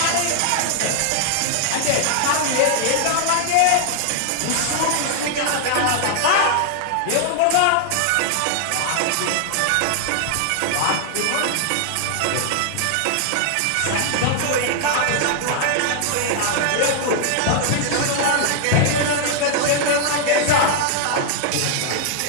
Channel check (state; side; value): different; both; correlation 0.00